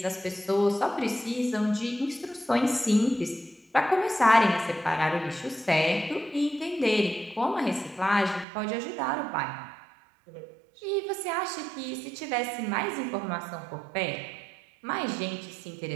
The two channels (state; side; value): drops out; left; at 8.5 s